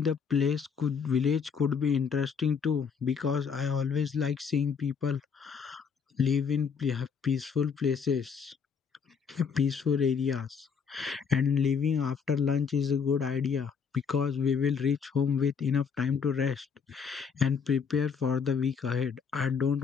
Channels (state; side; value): quieter; right; 6.3 dB